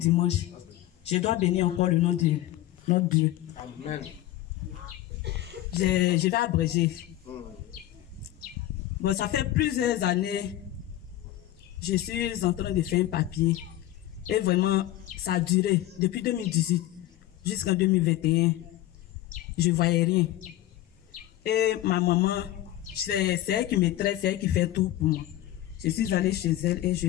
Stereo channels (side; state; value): right; quieter; 14.5 dB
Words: je dois bénir encore le nom de notre Dieu. Amen. Je vais abréger. Bon, ça fait plusieurs années, je suis en train de faire un papier. Et vraiment, ça a duré depuis 2018 jusqu'en 2021. Je ne voyais rien. Et ma maman, c'est elle qui me traite, c'est elle qui fait tout pour moi. Je suis allée chez elle et